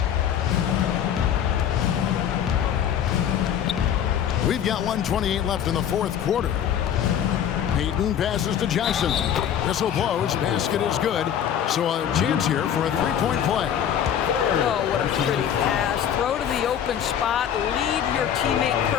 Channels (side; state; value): right; quieter; 9.3 dB